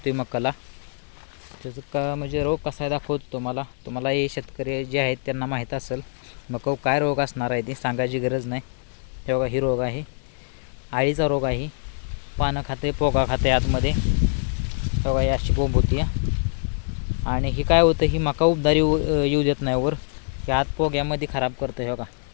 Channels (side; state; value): right; silent; digital silence